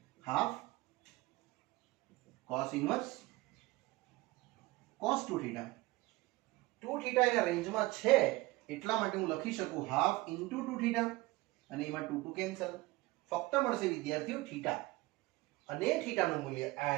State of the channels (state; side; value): quieter; left; 20.4 dB